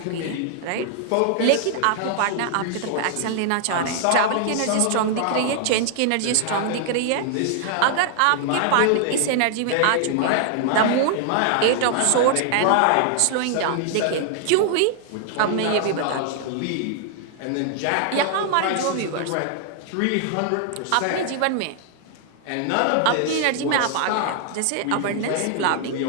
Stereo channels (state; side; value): different; both; correlation 0.00